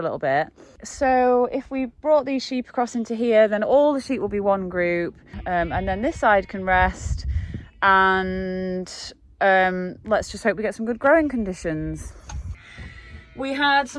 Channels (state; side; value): identical; both; correlation 1.00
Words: little bit. So if we brought these sheep across into here, then all the sheep will be one group, and then this side can rest. And let's just hope we get some good growing conditions. We had